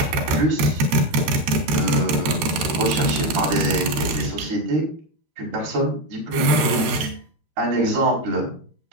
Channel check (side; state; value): left; late; 13 ms